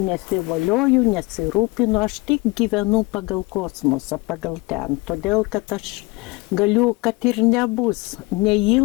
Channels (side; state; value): right; quieter; 24.1 dB